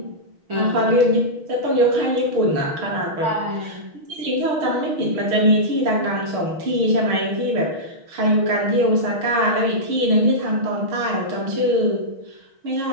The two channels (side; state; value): left; late; 6.3 ms